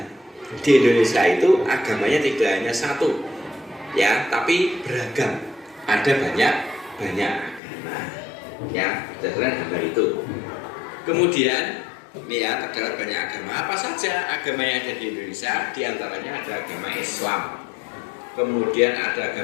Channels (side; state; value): right; drops out; at 7.6 s